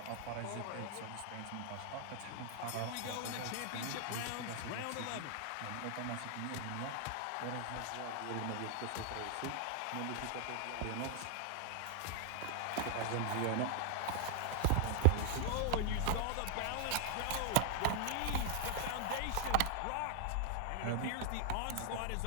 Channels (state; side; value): different; both; correlation 0.00